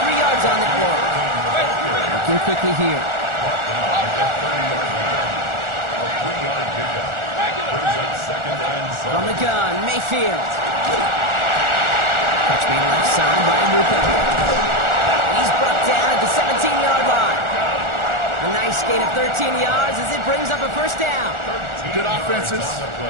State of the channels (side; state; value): left; late; 1.4 ms